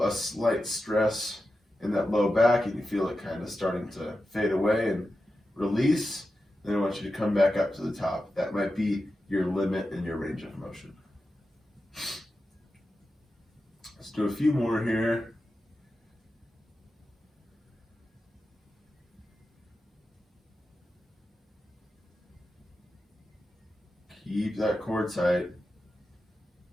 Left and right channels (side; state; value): both; normal; correlation 0.91